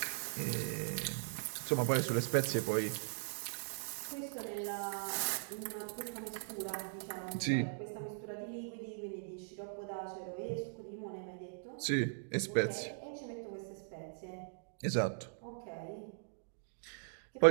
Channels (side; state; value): left; silent; digital silence